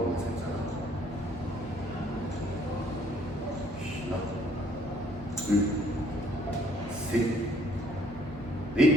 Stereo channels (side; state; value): both; normal; correlation 0.63